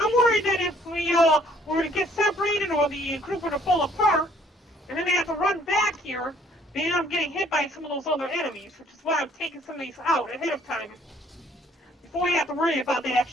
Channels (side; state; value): both; normal; correlation 0.62